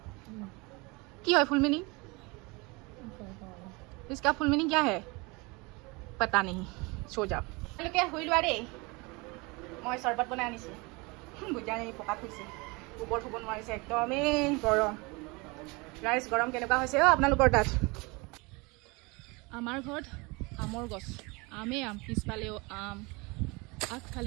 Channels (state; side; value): quieter; left; 26.5 dB